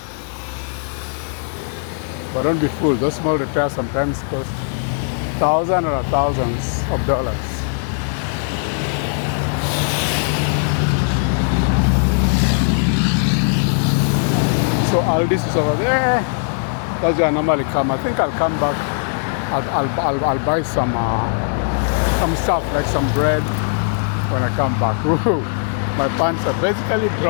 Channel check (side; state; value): right; silent; digital silence